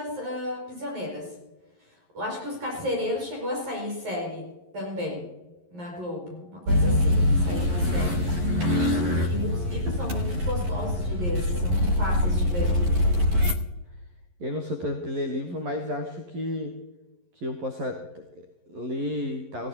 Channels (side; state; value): left; late; 11 ms